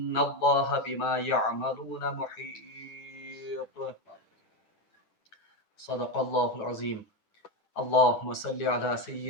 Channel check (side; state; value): right; late; 10 ms